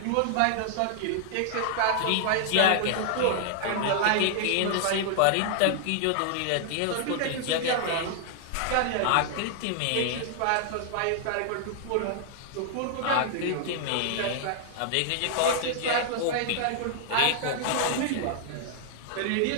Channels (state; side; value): different; both; correlation -0.01